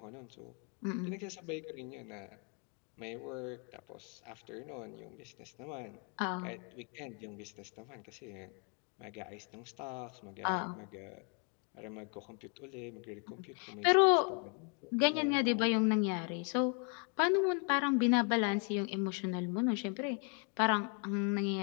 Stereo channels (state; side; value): quieter; right; 37.2 dB